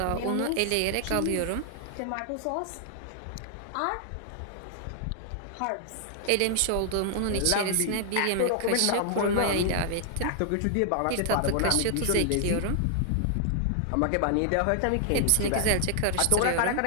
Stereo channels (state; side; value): different; both; correlation 0.00